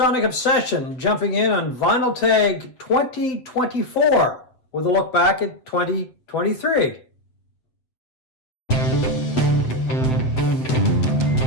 Obsession jumping in on Vinyl Tag 2024 with a look back at 2023.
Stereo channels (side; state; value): right; late; 7.8 ms